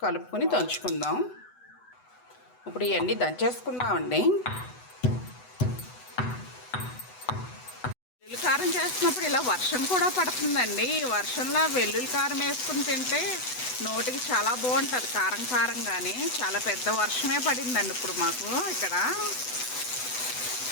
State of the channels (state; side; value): late; right; 8.0 ms